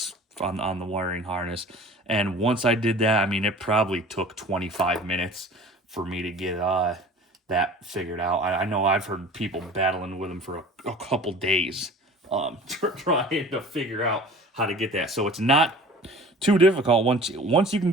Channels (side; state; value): both; normal; correlation 0.43